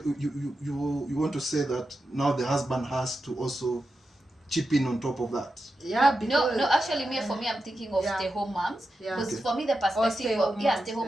want to say that now the husband has to also chip in on top of that? Yeah. No. Actually, for me, I'm thinking of stay-home moms. Yeah. Because for me, the perspective of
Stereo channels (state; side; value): normal; both; correlation 0.90